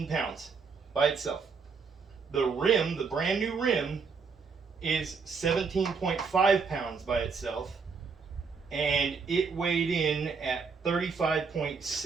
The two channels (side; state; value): left; quieter; 5.2 dB